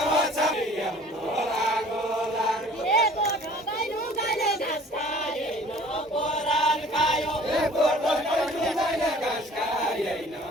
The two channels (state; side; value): normal; both; correlation 0.50